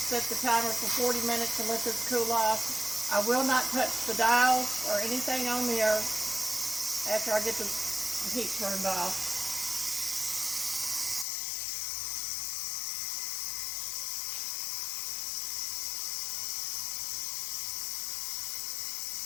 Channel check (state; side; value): drops out; right; at 11.2 s